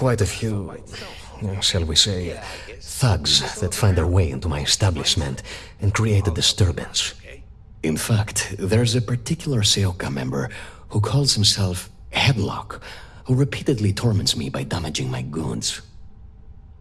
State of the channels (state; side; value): identical; both; correlation 1.00